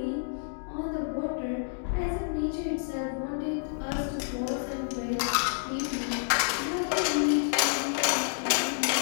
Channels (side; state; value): right; silent; digital silence